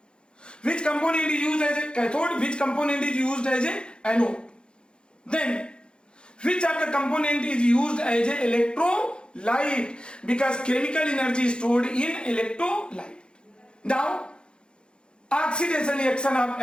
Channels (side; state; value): right; late; 0.052 ms